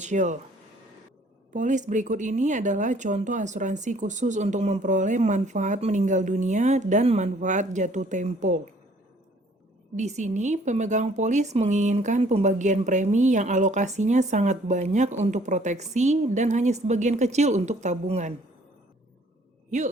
Polis berikut ini adalah contoh asuransi khusus untuk memperoleh manfaat meninggal dunia dan manfaat jatuh tempo. Di sini, pemegang polis menginginkan pembagian premi yang alokasinya sangat banyak untuk proteksi dan hanya sebagian kecil untuk tabungan.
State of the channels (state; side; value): normal; both; correlation 0.58